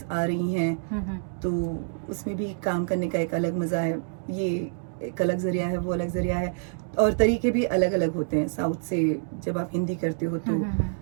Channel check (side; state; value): left; silent; digital silence